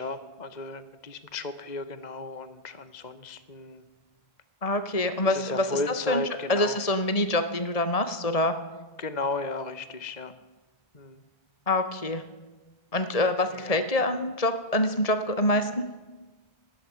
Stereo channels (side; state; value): right; late; 1.7 ms